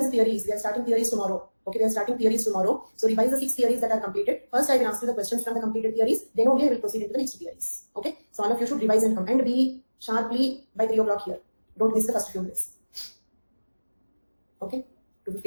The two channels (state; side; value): inverted; both; correlation -1.00